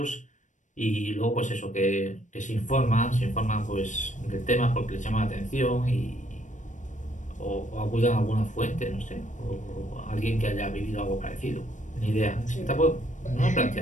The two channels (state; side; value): late; right; 0.36 ms